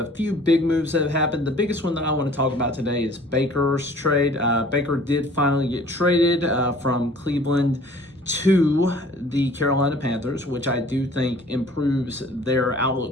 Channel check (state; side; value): normal; both; correlation 0.51